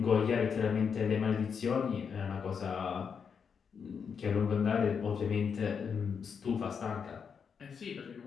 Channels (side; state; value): right; quieter; 6.5 dB